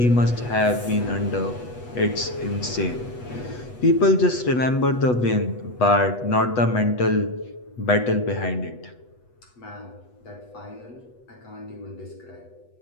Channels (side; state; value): right; late; 8.1 ms